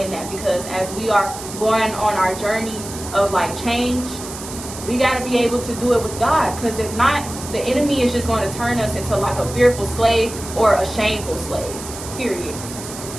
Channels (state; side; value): noise; right; hiss, 11 dB below the sound